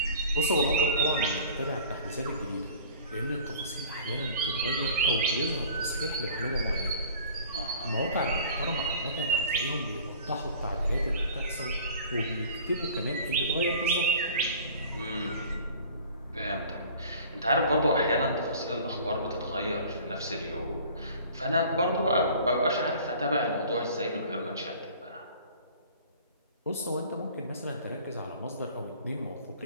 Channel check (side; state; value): both; inverted; correlation -0.47